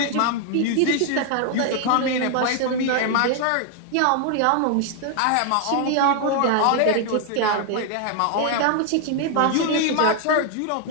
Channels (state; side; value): different; both; correlation 0.00